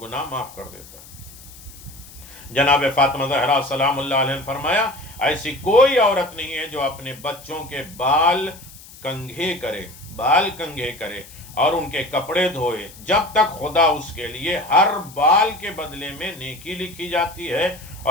گناہ معاف کر دیتا ہے۔ جناب فاطمہ زہرا سلام اللہ علیہ نے فرمایا ایسی کوئی عورت نہیں ہے جو اپنے بچوں کے بال کنگھے کرے اور ان کے کپڑے دھوئے جب تک خدا اس کے لیے ہر بال کے بدلے میں نیکی لکھی جاتی ہے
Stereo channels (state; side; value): noise; left; hiss, 19 dB below the sound